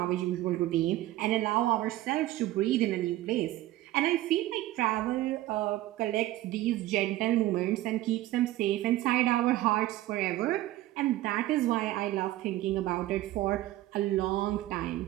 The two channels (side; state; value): left; quieter; 15.8 dB